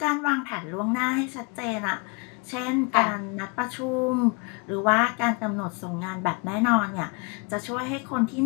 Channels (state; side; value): quieter; right; 32.9 dB